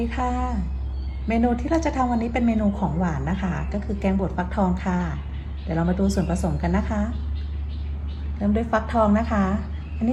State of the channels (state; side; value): identical; both; correlation 1.00